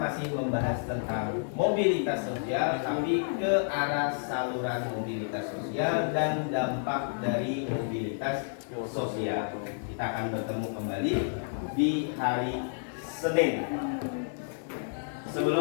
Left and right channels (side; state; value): right; silent; 58 dB below the other